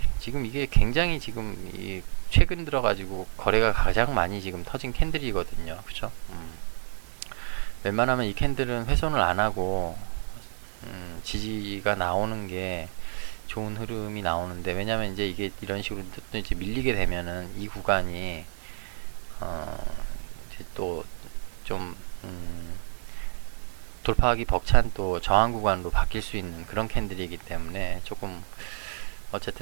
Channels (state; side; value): silent; left; digital silence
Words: 지금 이게 굉장히 지금 최근 들어가지고 거래가 가장 많이 지금 터진 캔들이거든요. 그죠? 웬만하면 이 캔들은 훼손을 안 하고 지지가 나오는 게 좋은 흐름이 나오는데, 왜냐면 이제 이게 이런 식으로 또 이제 밀리게 되면은 이 구간이 이제 또 좀 돌파하기 벅찬 또 저항 구간으로 바뀔 수 있는 그런 캔들이기 때문에 조금